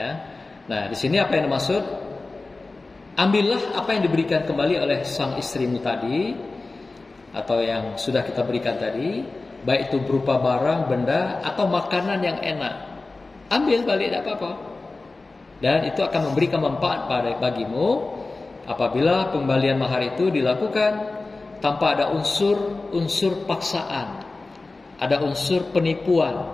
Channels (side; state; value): right; quieter; 3.4 dB